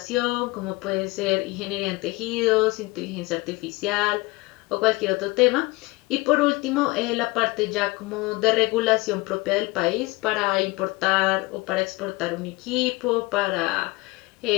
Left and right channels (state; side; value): quieter; right; 23.3 dB